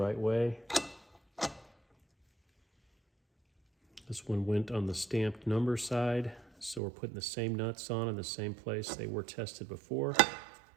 way. This one went on the stamped number side, so we're putting the same nuts on in the same place they were tested before.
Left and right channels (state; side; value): drops out; left; at 6.8 s